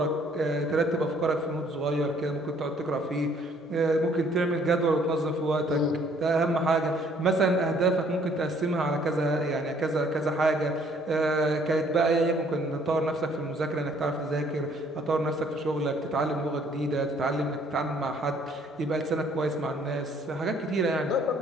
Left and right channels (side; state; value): both; normal; correlation 0.61